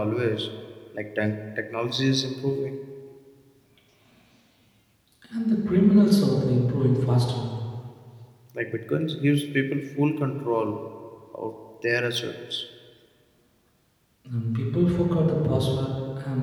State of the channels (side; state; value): both; identical; correlation 1.00